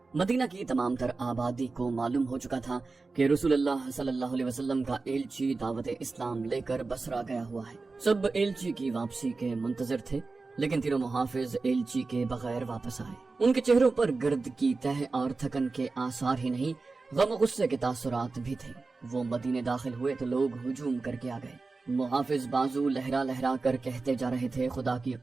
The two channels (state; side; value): quieter; left; 3.9 dB